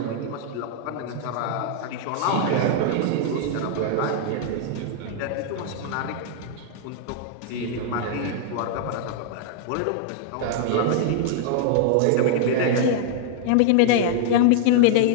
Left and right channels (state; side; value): different; both; correlation -0.01